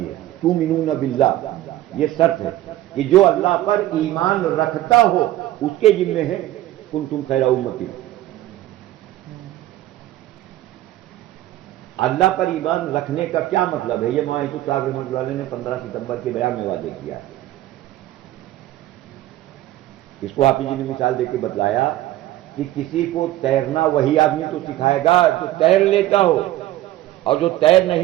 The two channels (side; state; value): left; quieter; 15.0 dB